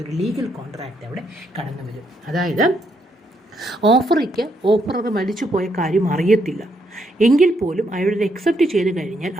ഒരു ലീഗൽ കോൺട്രാക്റ്റ് അവിടെ കടന്നു വരും. അതായത് ഓഫറർ മരിച്ചു പോയ കാര്യം അറിയത്തില്ല എങ്കിൽ പോലും അയാളത് അക്സെപ്റ്റ് ചെയ്ത് കഴിഞ്ഞാൽ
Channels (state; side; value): normal; both; correlation 0.76